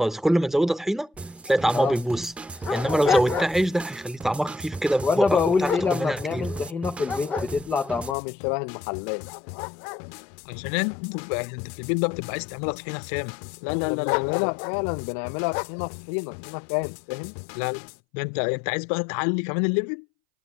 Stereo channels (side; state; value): right; drops out; at 8.2 s